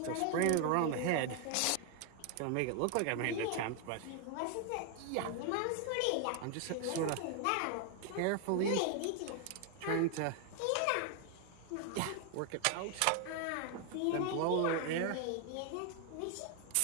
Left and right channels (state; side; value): different; both; correlation 0.00